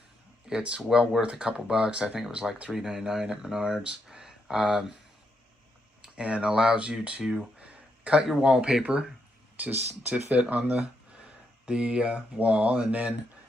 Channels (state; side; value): normal; both; correlation 0.80